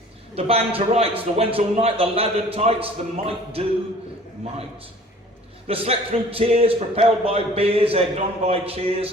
the banter rights, the went all night, the laddered tights, the might do, might, the slept through tears, propelled by beers, egged on by cheers,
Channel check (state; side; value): normal; both; correlation 0.50